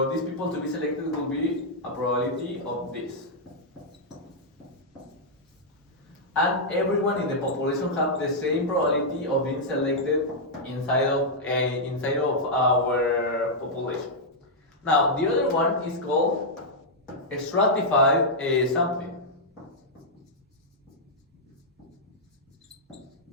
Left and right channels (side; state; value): both; normal; correlation -0.06